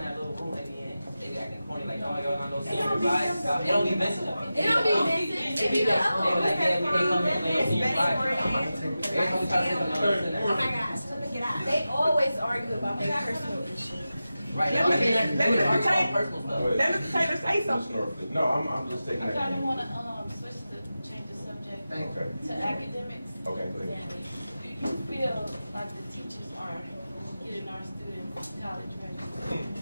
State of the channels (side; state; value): both; inverted; correlation -0.93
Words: little room they be in. They be acting corny like, oh, y'all not no senior advice. They don't be missing them. It don't be missing. They be like, yeah, we can't come here for no senior advice. Every time we try to sit them, they don't listen to Oh that. my gosh, let me get out. They always argue about their personal issues. Right, Let me- they let me would argue take- about personal stuff. Let Mr. Taylor say Ms. something. Norford. No, I'm just taking I that. kinda in. wanna, switch to change the subject Okay, to academics. okay, go ahead. Do you feel like the teachers are getting our students college ready?